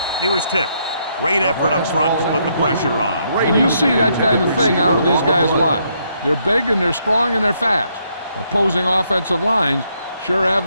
He was tipped. Great effort up front to put the pressure on. And you see that kind of thing out of these guys a lot. They're big and they're strong and they're fast. Opposing offensive lines sure have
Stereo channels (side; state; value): both; inverted; correlation -0.74